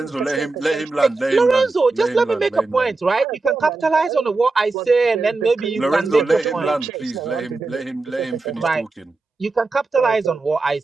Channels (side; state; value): left; quieter; 3.6 dB